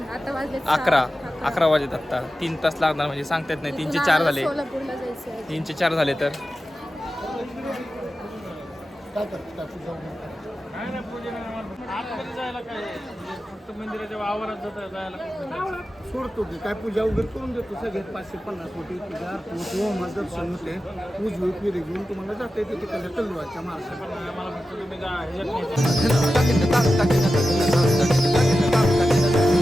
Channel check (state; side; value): normal; both; correlation 0.93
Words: आता वाजले 11 वाजत आता 3 तास लागणार म्हणजे सांगता येत नाही 3 चे 4 झाले सोलापूरला जायचं. 3 चे 4 झाले तर सोडतो की काय पूजा वगैरे करून देतो सगळ्यात 550 कोटी पूजा होम दर्शन होते उजवी पिढी घेऊन तुम्हाला जाता येते तिकडल्या तलवारच्या